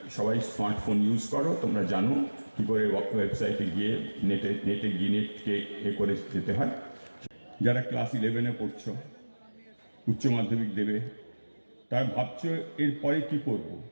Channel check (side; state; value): both; inverted; correlation -1.00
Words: সবাই স্মার্টফোন ইউজ করো, তোমরা জানো কী করে ওয়েবসাইটে গিয়ে নেটকে করে যেতে হয়। যারা ক্লাস 11-এ পড়ছো, উচ্চ মাধ্যমিক দেবে, তার ভাবছো এরপরে কি করব।